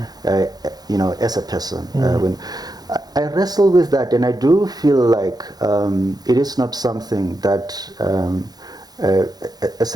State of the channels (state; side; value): late; left; 0.19 ms